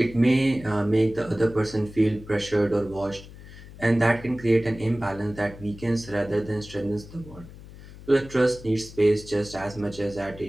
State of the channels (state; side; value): noise; left; hum, 17 dB below the sound